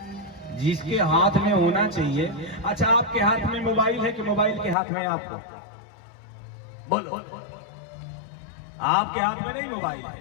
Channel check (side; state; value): right; drops out; at 4.8 s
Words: जिसके हाथ में होना चाहिए। अच्छा, आपके हाथ में मोबाइल है कि मोबाइल के हाथ में आप हो? बोलो। आपके हाथ में नहीं मोबाइल